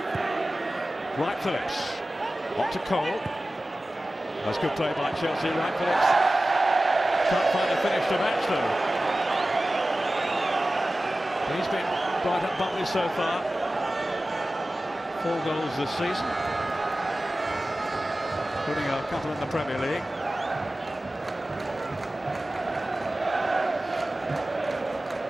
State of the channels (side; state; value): both; normal; correlation 0.96